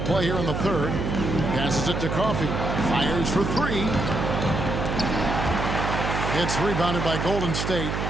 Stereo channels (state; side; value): noise; right; hum, 2 dB below the sound